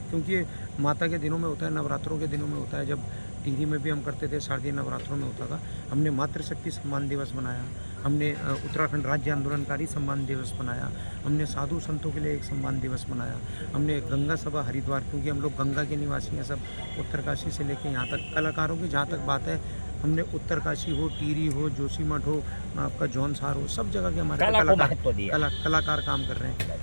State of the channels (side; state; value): both; inverted; correlation -1.00